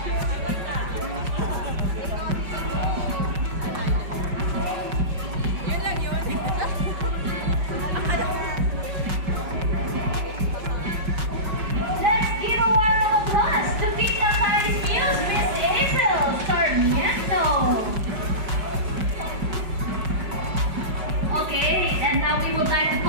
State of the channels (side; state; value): left; late; 5.4 ms